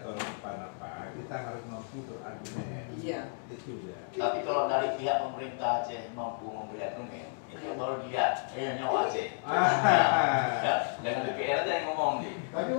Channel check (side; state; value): right; silent; digital silence